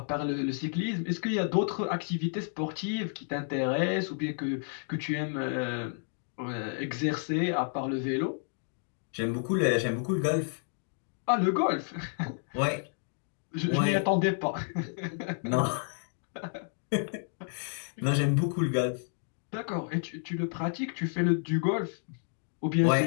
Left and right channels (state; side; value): silent; right; digital silence